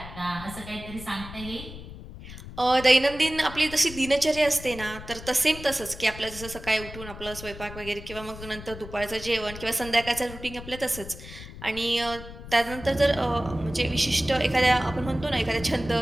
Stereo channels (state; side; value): noise; left; rumble, 13 dB below the sound